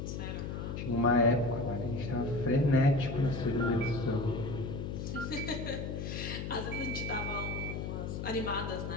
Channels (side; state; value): left; noise; hum, 5 dB below the sound